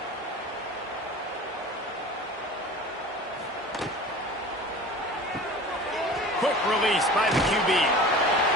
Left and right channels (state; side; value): normal; both; correlation 0.38